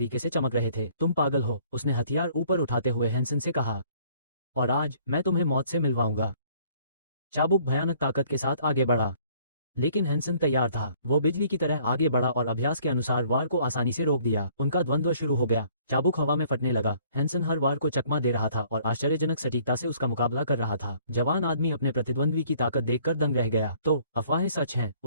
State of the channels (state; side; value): inverted; both; correlation -0.59